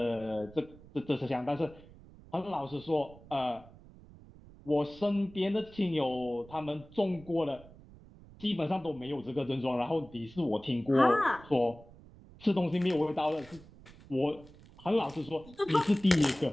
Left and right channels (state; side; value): noise; right; rumble, 21 dB below the sound